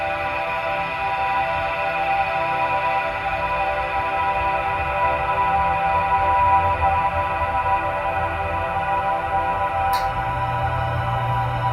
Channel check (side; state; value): both; identical; correlation 1.00